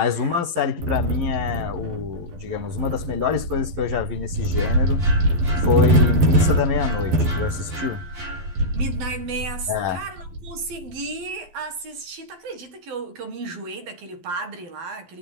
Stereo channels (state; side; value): late; left; 11 ms